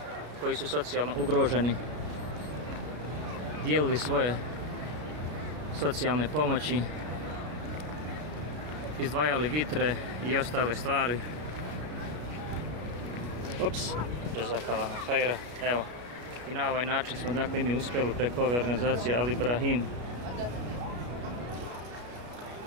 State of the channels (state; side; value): late; left; 33 ms